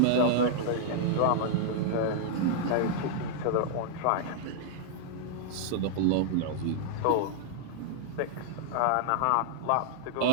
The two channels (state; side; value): different; both; correlation -0.01